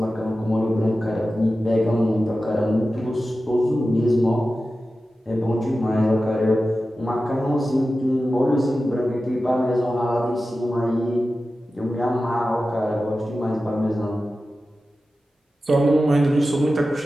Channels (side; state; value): both; normal; correlation 0.94